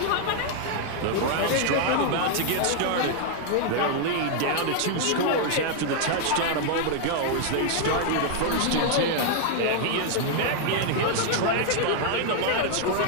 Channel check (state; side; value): different; both; correlation 0.00